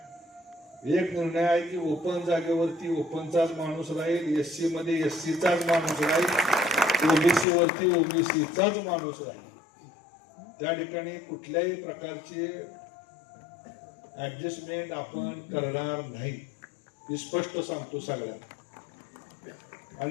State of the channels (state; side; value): drops out; right; at 7.5 s